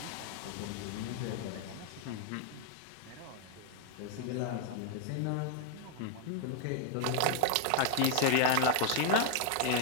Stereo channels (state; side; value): different; both; correlation 0.00